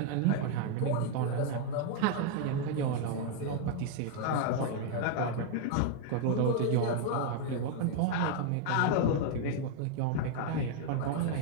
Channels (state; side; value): different; both; correlation 0.00